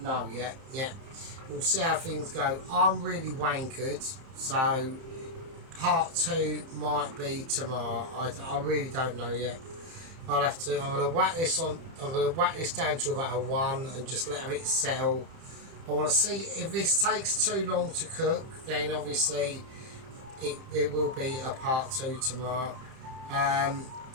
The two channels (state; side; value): late; left; 30 ms